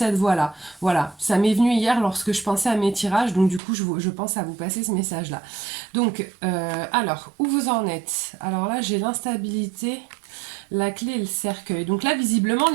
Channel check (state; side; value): drops out; left; at 3.6 s